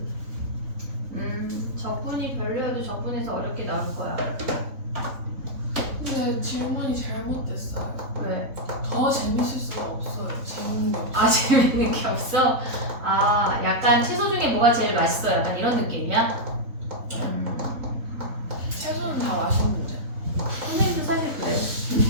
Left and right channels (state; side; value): late; left; 3.7 ms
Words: 적분이 별로여도 적분에서 어렵게 나올 거야. 근데 질문이 잘못됐어요. 왜? 더 재밌을 수가 없어요. 재밌는 게 없어요. 아 재밌는 게 없어? 아 약간 채소 중에 뭐가 제일 맛있어? 약간 이런 느낌이야? 채소는 다 맛있는데. 선생님도 사실 그래.